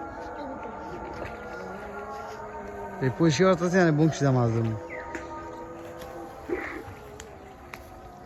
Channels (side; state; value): both; identical; correlation 1.00